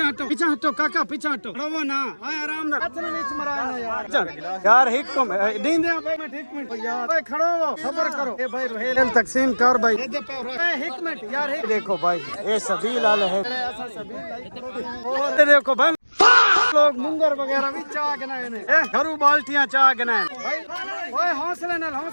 पीछे हटो काका पीछे हटो रहो ना ओए आराम ना हाथ नीचे मराना यार दिन दे भाई। मैं एक मिनट यार ओए खड़ो सब्र करो। ए भाई रोहेल तकसीम कर भाई। एक मिनट यार देखो भाई ये सबील वाले है ऐसा सबील। और देखो भाई लोग मुंगर वगैरह भी चाह गनाए ने घरू बाल्टियां चाह गनाए भाई। ओए हौसला नाल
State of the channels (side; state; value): both; inverted; correlation -1.00